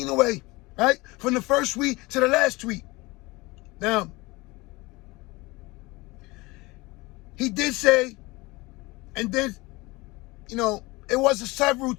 away, right? From the first tweet to the last tweet. Now, he did say, and then, it was several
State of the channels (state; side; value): quieter; right; 22.8 dB